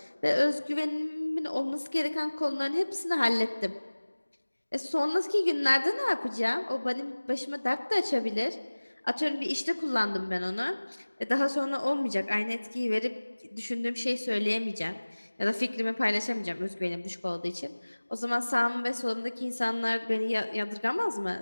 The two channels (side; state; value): both; inverted; correlation -1.00